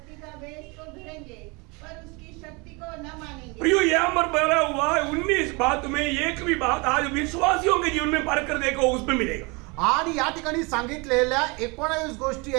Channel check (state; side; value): quieter; left; 28.4 dB